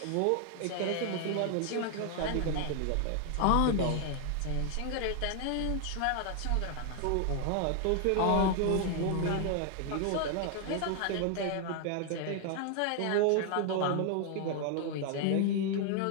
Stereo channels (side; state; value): both; different; correlation 0.00